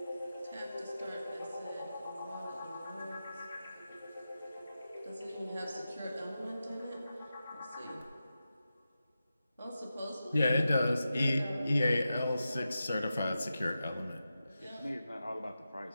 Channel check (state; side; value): inverted; both; correlation -0.91